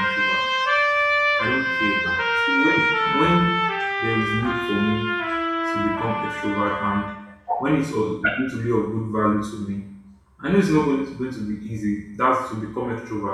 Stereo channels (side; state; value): both; identical; correlation 1.00